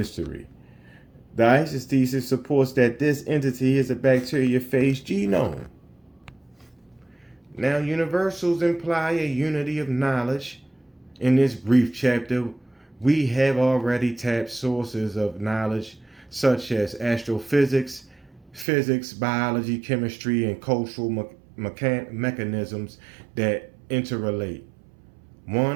The ISIS thesis supports that this entity is a bacteriophage genome. Now, universals imply a unity of knowledge. In this brief chapter, we have already tapped sources of knowledge such as astrophysics, physics, biology, chemistry, and cultural mechanisms that interrelate.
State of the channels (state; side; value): drops out; left; at 18.7 s